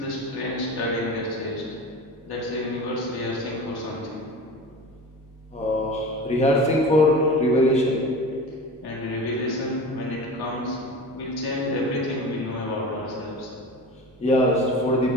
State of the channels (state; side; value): normal; both; correlation 0.34